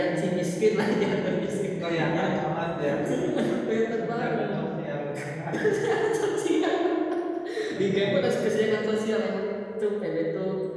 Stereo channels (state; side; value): identical; both; correlation 1.00